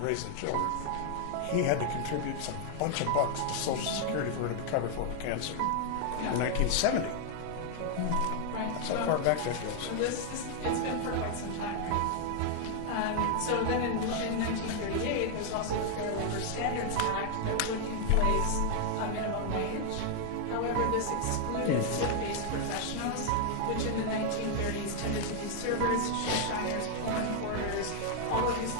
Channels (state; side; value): different; both; correlation 0.00